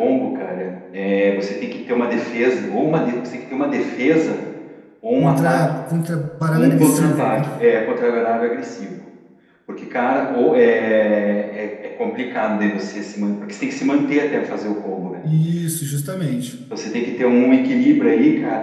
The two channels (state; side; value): identical; both; correlation 1.00